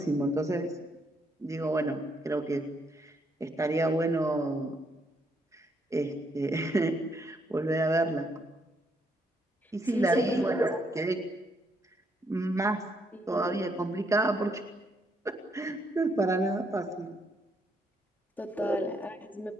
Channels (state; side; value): normal; both; correlation 0.74